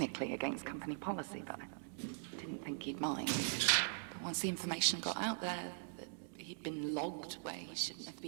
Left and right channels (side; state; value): left; silent; 50 dB below the other